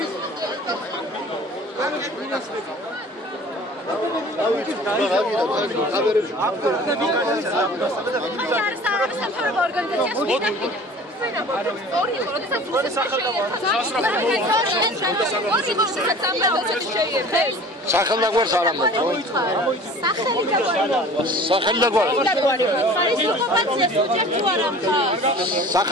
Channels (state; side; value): normal; both; correlation 0.44